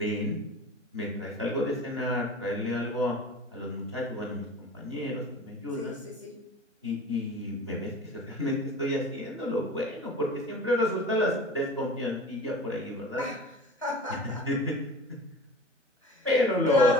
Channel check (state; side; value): normal; both; correlation 0.39